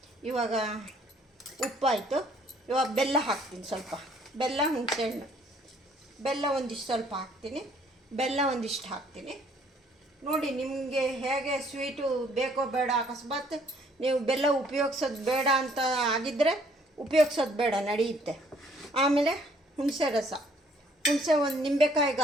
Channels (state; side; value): normal; both; correlation 0.62